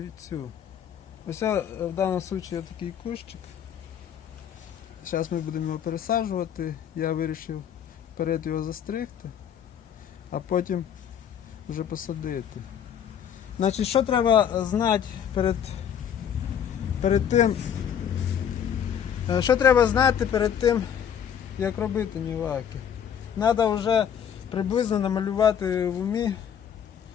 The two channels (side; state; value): right; quieter; 8.7 dB